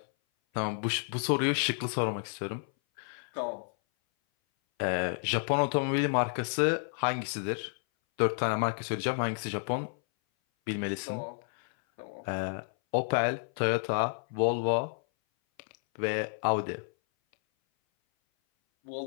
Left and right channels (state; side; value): silent; right; 57 dB below the other